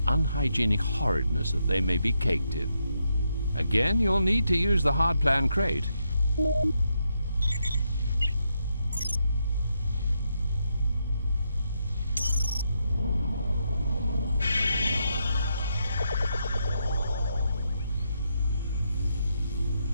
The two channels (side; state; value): both; inverted; correlation -0.81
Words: unhygienic horridness that they may be caked in. Again, you'll need to use the hardplan crate.